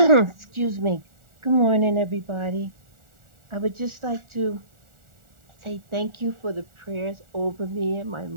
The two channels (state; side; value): late; left; 1.4 ms